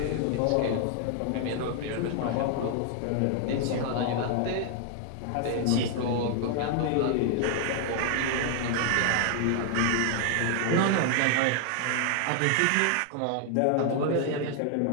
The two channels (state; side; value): different; both; correlation 0.00